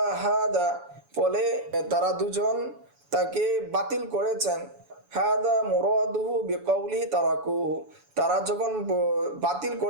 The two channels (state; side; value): late; left; 7.0 ms